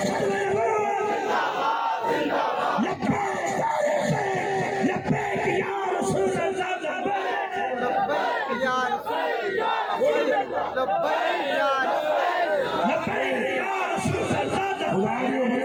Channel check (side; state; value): both; identical; correlation 1.00